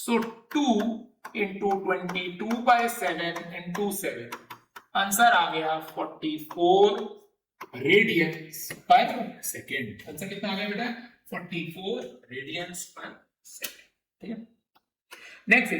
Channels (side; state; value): both; identical; correlation 1.00